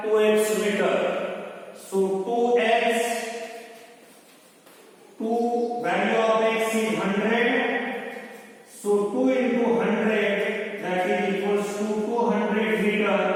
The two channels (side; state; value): both; identical; correlation 1.00